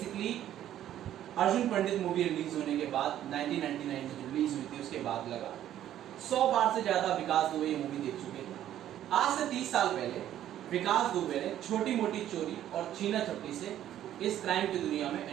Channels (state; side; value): quieter; left; 11.7 dB